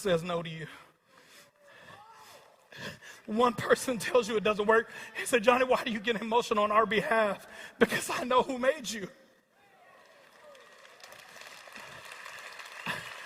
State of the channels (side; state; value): both; identical; correlation 1.00